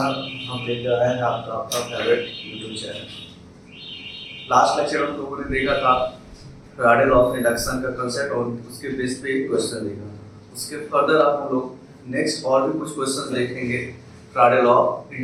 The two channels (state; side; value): identical; both; correlation 1.00